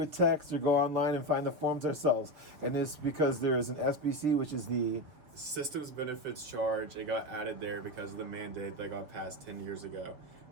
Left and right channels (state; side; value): late; left; 6.1 ms